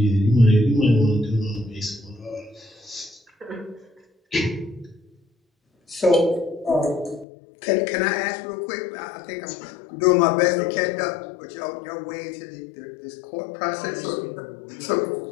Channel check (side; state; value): right; drops out; at 7.2 s